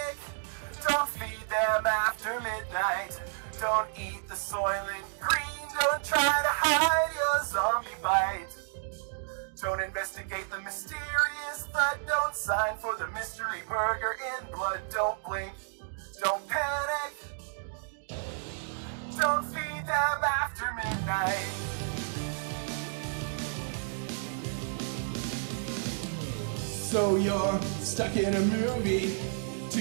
don't feed them after midnight. Don't eat the soylent green, don't try to hide your zombie bite. Don't investigate the mysterious threat, don't sign for the mystery burger in blood. Don't blink, don't panic, don't feed them after midnight. So you're stuck in a movie.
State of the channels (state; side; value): silent; left; digital silence